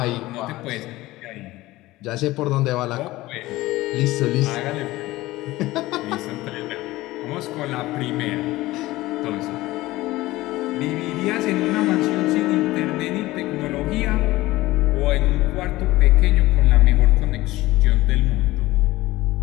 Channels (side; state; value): right; quieter; 18.2 dB